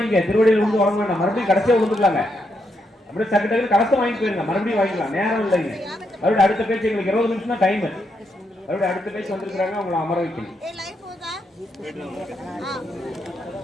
திருவடியில் வந்து வாங்க வேண்டாம், மறுபடியும் கடைசியா வந்துக்கலாங்க. அப்படியே டக்கு டக்கு கலசம் வாங்கி போயிருங்க, மறுபடியும் வாங்கிக்கலாம், நேரம் இல்லைங்க. மறுபடியும் அடுத்த பேச்சு எங்களுக்கு 20 நிமிஷம் தான் டைம். மறுபடியும் அடுத்த பேச்சு வந்திருக்கிறாங்க, அவங்களை அமர வைக்கணும்.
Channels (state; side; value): normal; both; correlation 0.80